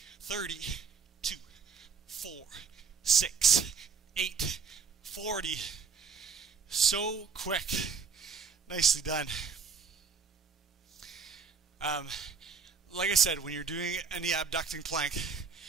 30, 2, 4, 6, 8, 40. So quick. Nicely done. Like I said, when you're doing any abducting plank,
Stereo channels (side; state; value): left; quieter; 5.7 dB